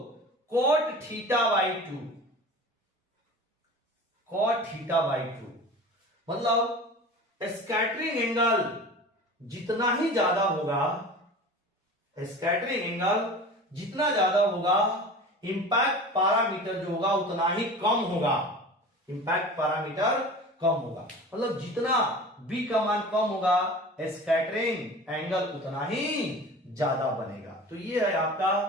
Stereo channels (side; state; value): both; normal; correlation 0.37